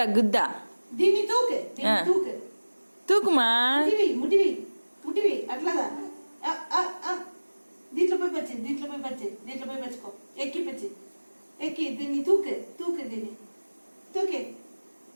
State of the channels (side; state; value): both; inverted; correlation -1.00